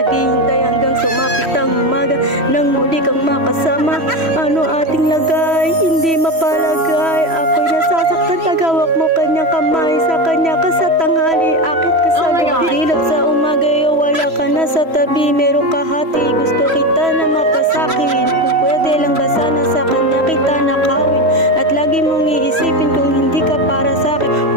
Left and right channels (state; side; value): late; left; 3.1 ms